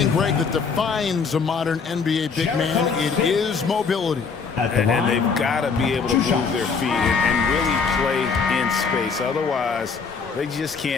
Greg, that defines a modern NBA big man, it is mobility. And they've got to be able to move their feet and really play in space. Otherwise, they just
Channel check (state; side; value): quieter; right; 5.3 dB